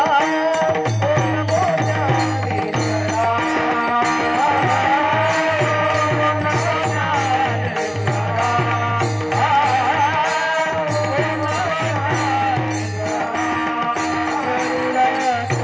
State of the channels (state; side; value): identical; both; correlation 1.00